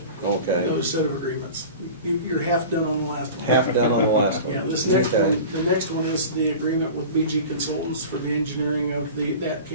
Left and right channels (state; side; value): inverted; both; correlation -0.36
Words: okay. another set of agreements. You're half done on the last one. Half done on the last one. Yeah, this next Okay. one, the next one is the agreement with BG Consultants for the engineering of that